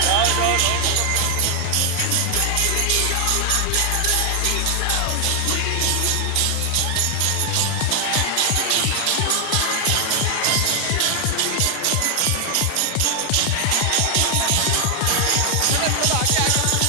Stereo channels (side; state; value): both; different; correlation 0.00